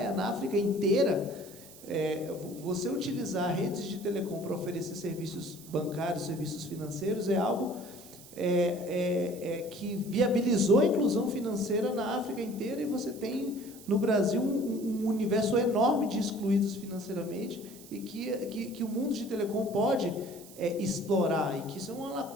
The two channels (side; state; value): right; noise; hiss, 19 dB below the sound